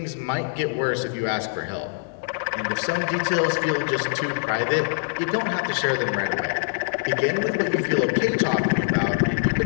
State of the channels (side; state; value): right; silent; digital silence